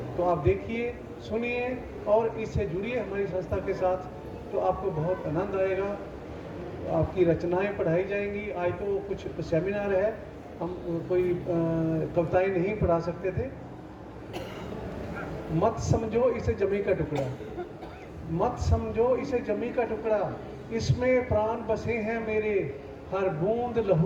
तो आप देखिए, सुनिए और इससे जुड़िए हमारी संस्था के साथ, तो आपको बहुत आनंद आएगा। आपकी रचनाएं पढ़ाई जाएंगी। आज तो कुछ सेमिनार है, हम कोई कविताएं नहीं पढ़ा सकते थे। मत समझो इसे जमी का टुकड़ा, मत समझो इसे जमी का टुकड़ा, इसमें प्राण बसे हैं मेरे, हर बूंद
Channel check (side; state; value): both; identical; correlation 1.00